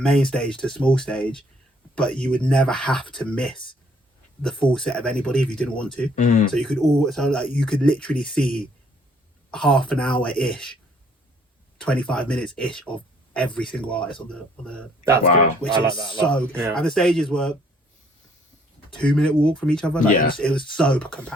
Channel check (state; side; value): normal; both; correlation 0.63